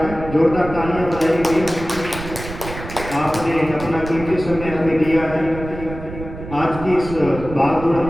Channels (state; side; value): noise; right; rumble, 11 dB below the sound